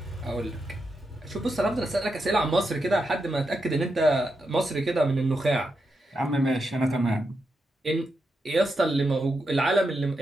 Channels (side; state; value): both; normal; correlation 0.85